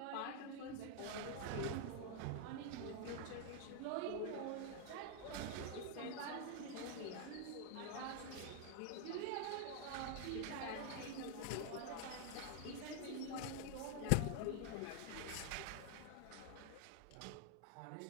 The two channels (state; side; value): different; both; correlation 0.00